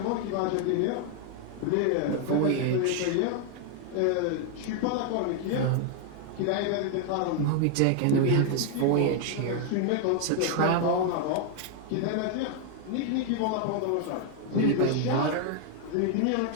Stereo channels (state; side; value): different; both; correlation 0.00